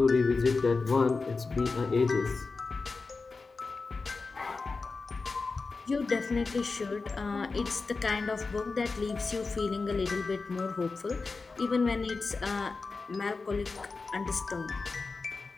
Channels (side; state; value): right; quieter; 4.1 dB